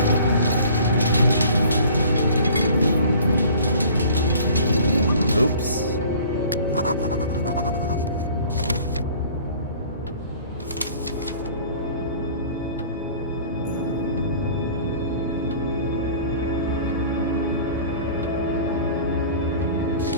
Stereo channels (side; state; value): both; inverted; correlation -0.48